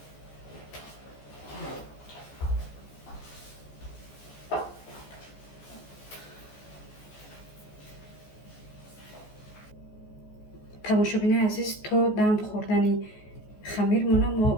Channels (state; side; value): late; right; 14 ms